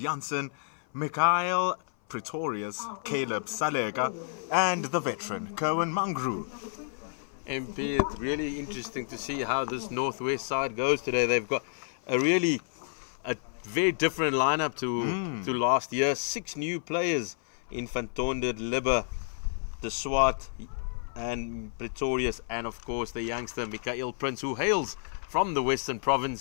Mikhail Pretorius, Caleb Salega, and the veteran, Kerwin Mangru. MP, it's really interesting to see how this Northwest side goes today. They've got a very different lineup to last year. 6 new players in Van Tonder, Libber, De Swart, and Pretorius, and of course the youngster Mikhail Prince, who hails from the Western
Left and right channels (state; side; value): silent; right; 56 dB below the other